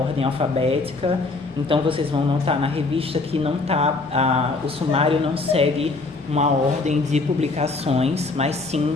alfabética. Então vocês vão notar na revista que o sumário não segue uma ordem de publicações, mas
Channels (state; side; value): quieter; right; 3.6 dB